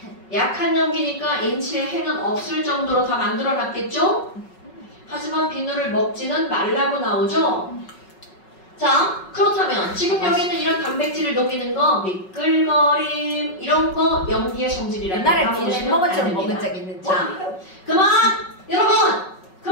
약한 염기니까 인체에 해는 없을 정도로 다 만들어놨겠죠? 하지만 비누를 먹지는 말라고 나오죠? 자, 그렇다면 지금 여기 있는 이런 단백질을 녹이는 거, 미끌거림 이런 거 염기의 성질이라고 옛날에 비누 햄버거처럼 먹은 적 있는지. 자, 그만! 여러분!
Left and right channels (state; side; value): late; right; 5.4 ms